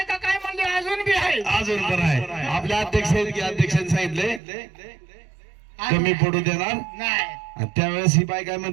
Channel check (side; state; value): left; drops out; at 4.4 s